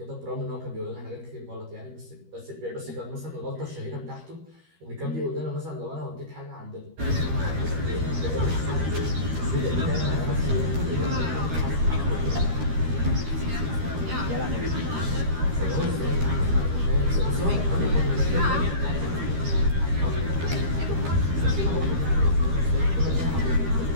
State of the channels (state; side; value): late; left; 13 ms